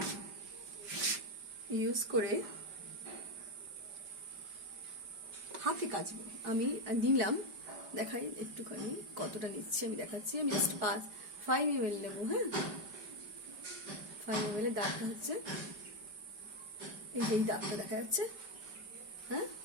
ইউজ করে হাতে কাচবো। আমি নিলাম, দেখাই একটুখানি কতটা নিচ্ছি আমি দেখাচ্ছি। আমি জাস্ট 5 ml নেবো। হ্যাঁ, 5 ml এর দাগটা হচ্ছে এই দাগটা দেখা যাচ্ছে। হ্যাঁ,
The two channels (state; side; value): late; left; 5.1 ms